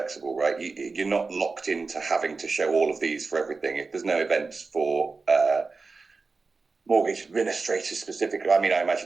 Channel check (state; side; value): quieter; left; 4.2 dB